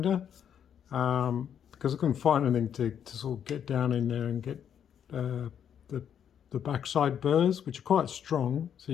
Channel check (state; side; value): quieter; right; 8.7 dB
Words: because I couldn't find anything to sort of get down in there and get the backside burrs, which are quite strong, so